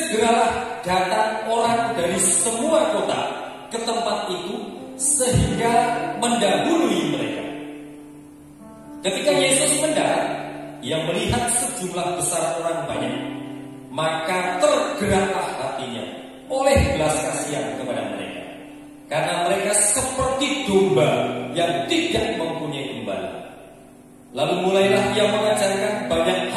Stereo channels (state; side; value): identical; both; correlation 1.00